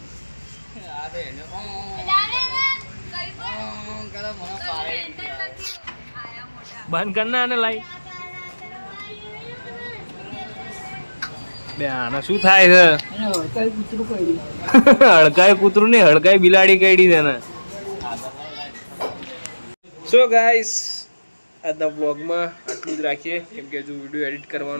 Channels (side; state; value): both; inverted; correlation -1.00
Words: બંધ કરના અને લાઈ બે. આના શું થાય છે? હડકાય કૂતરું નહીં, હડકાય બિલાડી કઈડી છે ને. સો ગાઈસ આજના વ્લોગમાં આટલું જ રાખીએ, કેમ કે હજુ વિડીયો એડિટ